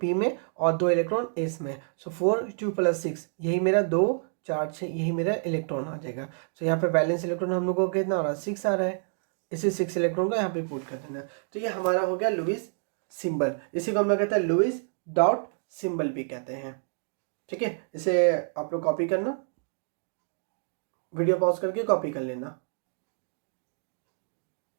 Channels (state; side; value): silent; left; 58 dB below the other